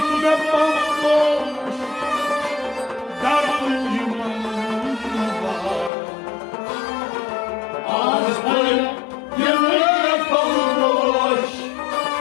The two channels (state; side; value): drops out; right; at 5.9 s